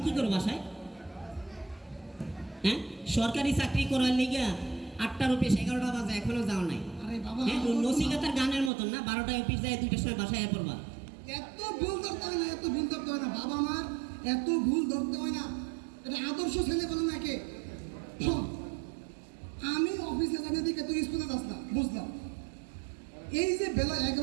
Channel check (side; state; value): left; drops out; at 8.7 s